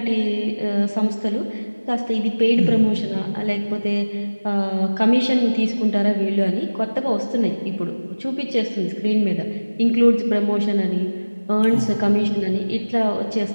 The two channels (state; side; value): inverted; both; correlation -1.00